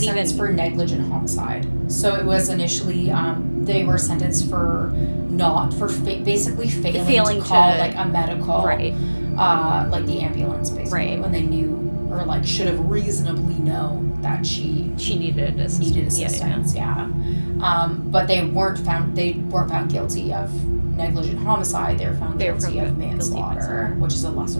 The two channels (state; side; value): inverted; both; correlation -1.00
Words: even for negligent homicide. So it was initially they were sentenced for basically failing to call like a medical, right? Like the ambulance, basically, right, when they knew or like should have reasonably known that she needed assistance. Yeah. But they weren't found guilty of negligent homicide. They were found guilty of manslaughter, which is a